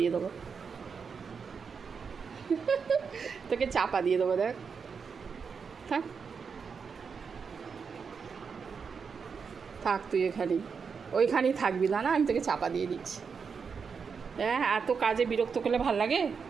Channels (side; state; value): left; quieter; 5.8 dB